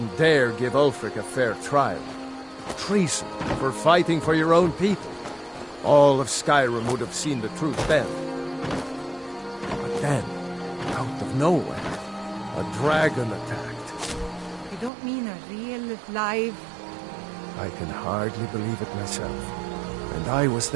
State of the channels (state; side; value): drops out; left; at 14.9 s